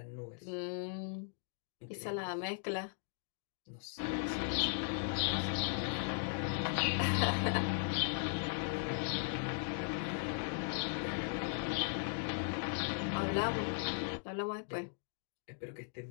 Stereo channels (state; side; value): silent; right; digital silence